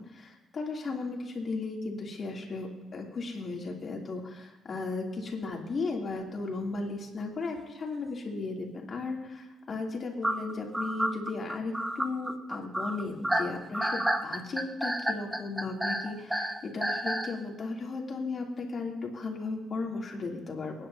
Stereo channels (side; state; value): both; normal; correlation 0.84